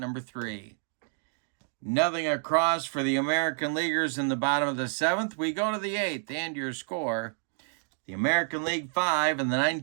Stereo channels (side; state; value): left; silent; 56 dB below the other